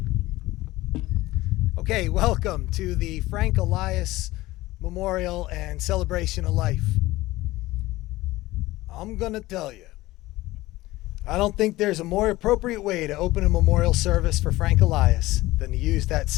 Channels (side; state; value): right; quieter; 18.3 dB